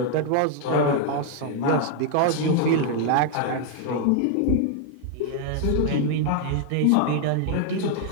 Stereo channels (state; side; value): different; both; correlation 0.00